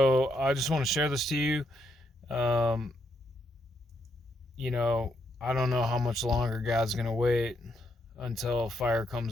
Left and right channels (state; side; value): normal; both; correlation 0.77